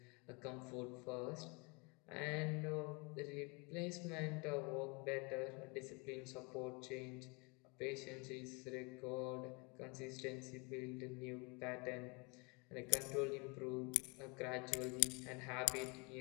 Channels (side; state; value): right; quieter; 30.1 dB